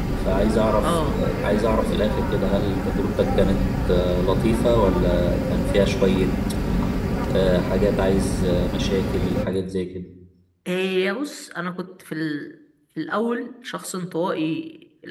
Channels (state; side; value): identical; both; correlation 1.00